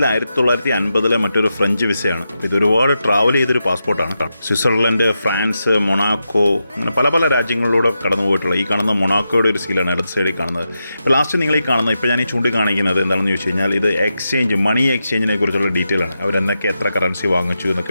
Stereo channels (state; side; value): inverted; both; correlation -0.88